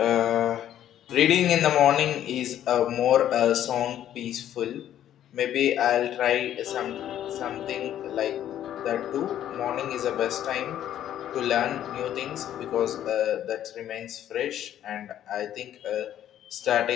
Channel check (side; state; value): right; quieter; 11.2 dB